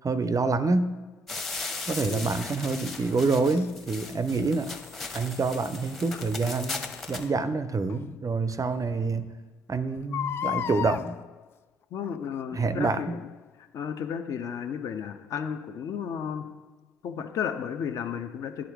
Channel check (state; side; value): normal; both; correlation 0.69